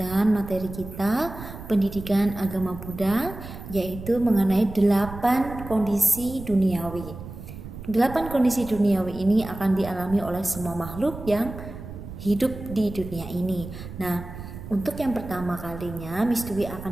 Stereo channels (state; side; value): noise; right; rumble, 12 dB below the sound